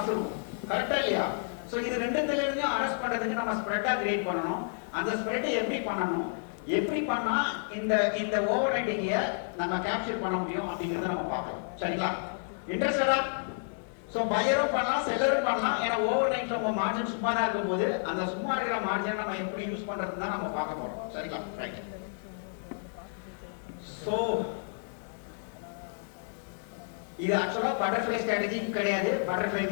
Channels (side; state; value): right; silent; digital silence